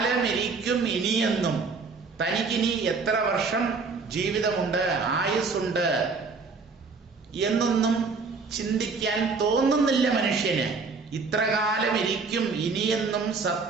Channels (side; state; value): left; quieter; 4.5 dB